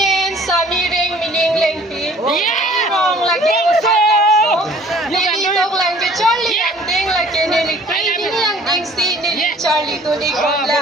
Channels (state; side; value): normal; both; correlation 0.53